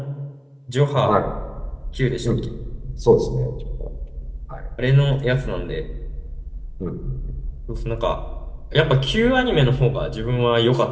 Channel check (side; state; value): both; identical; correlation 1.00